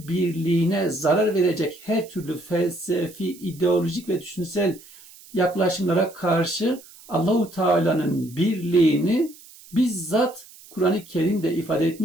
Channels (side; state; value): right; noise; hiss, 22 dB below the sound